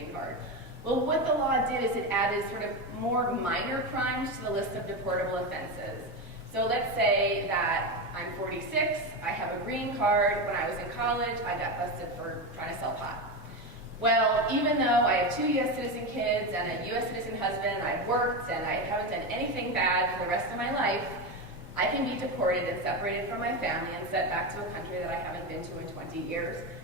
card. Well, what the law did is it added sort of more minor crimes to the list of deportable offenses. So let's say that I'm 46, I have a green card. When I was in college, I got busted for trying to sell pot. Well, even though I have 2 U.S. citizen kids and a U.S. citizen husband, and I've worked and I haven't done anything bad for the rest of my life, I can be deported and separated from my family and sent back to a country that I haven't been to in 20 years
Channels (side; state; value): both; normal; correlation 0.16